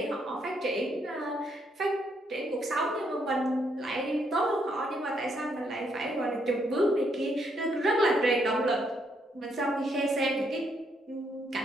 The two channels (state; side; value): normal; both; correlation 0.74